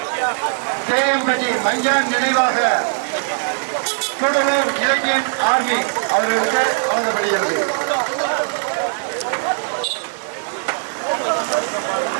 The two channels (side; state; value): left; silent; digital silence